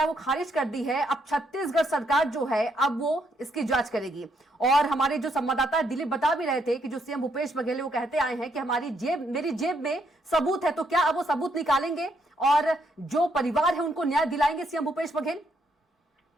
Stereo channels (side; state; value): both; normal; correlation 0.74